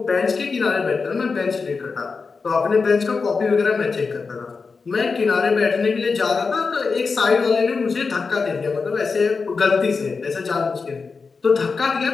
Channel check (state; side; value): quieter; right; 4.7 dB